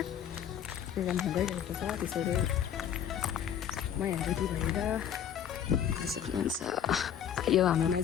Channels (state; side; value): quieter; right; 9.2 dB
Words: प्रोग्राम भइरहेको छ। त्यसैले म यहाँ रेडी भएर सक्नुहुन्छ। यो हाम्रो